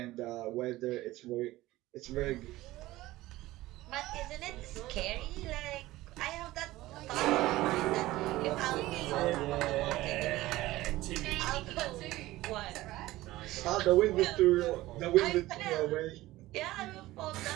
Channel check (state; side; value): quieter; left; 17.4 dB